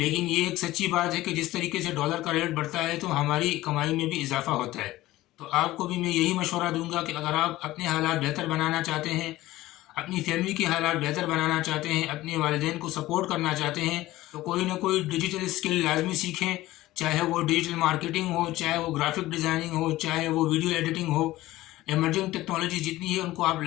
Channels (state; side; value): quieter; right; 16.8 dB